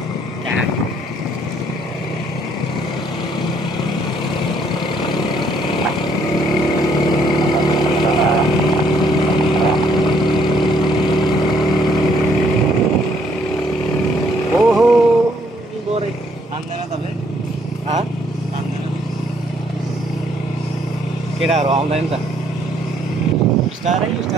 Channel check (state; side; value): normal; both; correlation 0.67